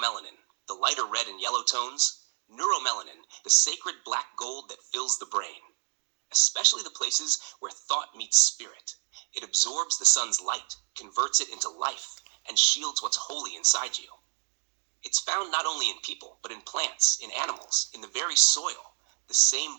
the lighter red and yellow tones; neuromelanin, the sacred black gold that fills the brain. Especially the places where thought meets spirit. It absorbs the sun's light, converts it into life, and shields what's holy inside you. It's found not only in people, but in plants, in animals, in the very soil, the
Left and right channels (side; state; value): left; quieter; 38.3 dB